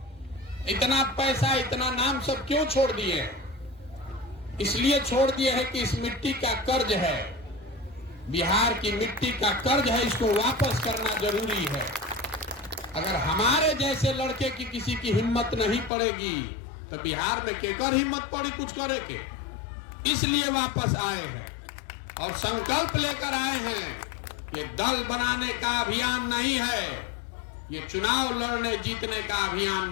इतना पैसा, इतना नाम सब क्यों छोड़ दिए? इसलिए छोड़ दिए है कि इस मिट्टी का कर्ज है, बिहार की मिट्टी का कर्ज है, इसको वापस करना जरूरी है। अगर हमारे जैसे लड़के की किसी की हिम्मत नहीं पड़ेगी तो बिहार में केकर हिम्मत पड़ी कुछ करे के? इसलिए वापस आए हैं और संकल्प लेकर आए हैं। ये दल बनाने का अभियान नहीं है, ये चुनाव लड़ने जीतने का अभियान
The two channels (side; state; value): right; drops out; at 15.9 s